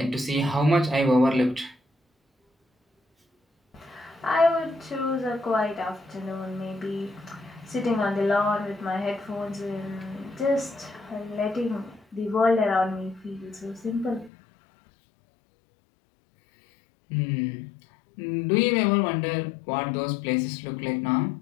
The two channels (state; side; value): drops out; right; at 14.3 s